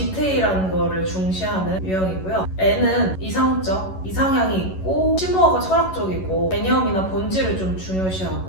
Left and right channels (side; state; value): right; late; 11 ms